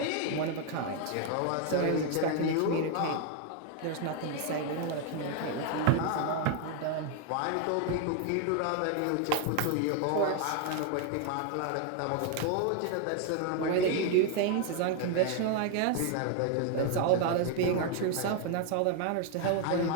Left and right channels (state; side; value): different; both; correlation 0.01